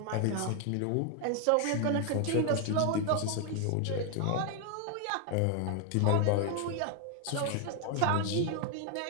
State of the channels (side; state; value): both; different; correlation 0.00